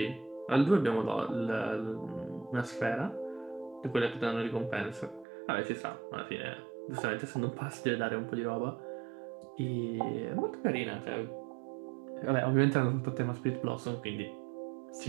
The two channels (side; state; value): left; drops out; at 5.2 s